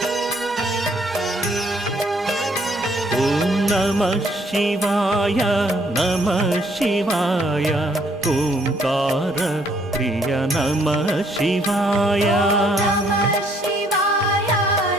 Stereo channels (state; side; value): normal; both; correlation 0.66